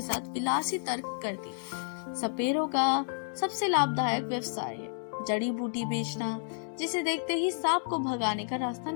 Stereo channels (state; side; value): silent; right; digital silence